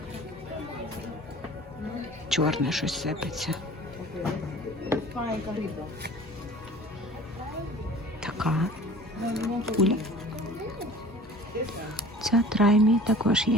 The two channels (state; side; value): normal; both; correlation 0.44